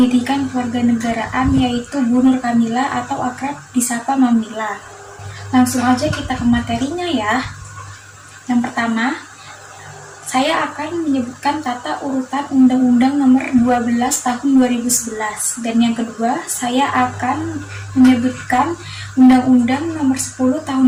Kewarganegaraan, yaitu Bu Nur Kamila atau akrab disapa Mamila. Langsung aja kita ke materinya ya. Yang pertama, saya akan menyebutkan tata urutan Undang-Undang Nomor 12 Tahun 2011. Dan yang kedua, saya akan menyebutkan Undang-Undang Nomor 10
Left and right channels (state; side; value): identical; both; correlation 1.00